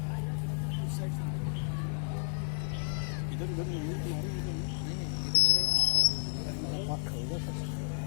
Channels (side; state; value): right; silent; 56 dB below the other